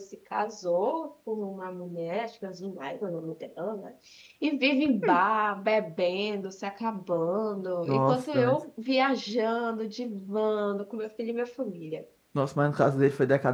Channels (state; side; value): identical; both; correlation 1.00